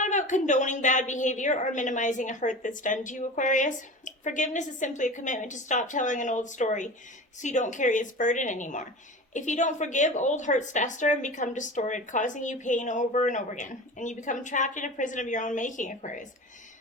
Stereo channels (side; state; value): both; normal; correlation 0.33